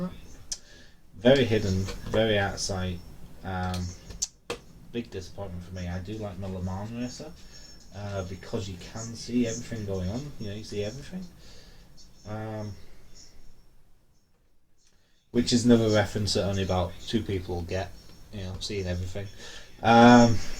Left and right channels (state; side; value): identical; both; correlation 1.00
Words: Very hidden, very out of sight. Big disappointment for me. I do like my Le Mans racer because you can see everything going on. You see everything. Which is another reference that only about 2 people get. Seeing everything.